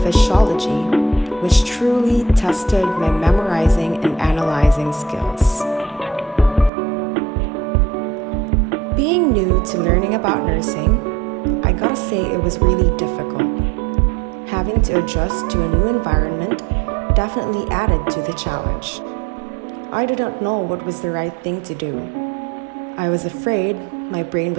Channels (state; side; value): drops out; left; at 6.7 s